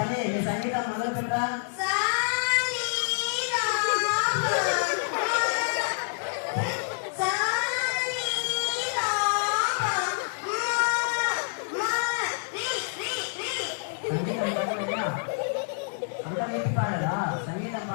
నీ సంగీతం మొదలు పెట్టరా. అంతా పెట్టి పాడరా? సంగీతం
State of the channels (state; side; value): silent; right; 60 dB below the other